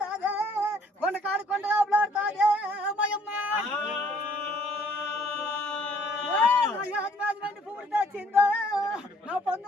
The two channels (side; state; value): both; normal; correlation 0.61